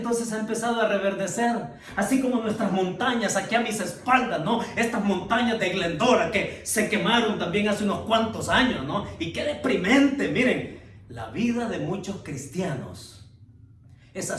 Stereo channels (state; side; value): identical; both; correlation 1.00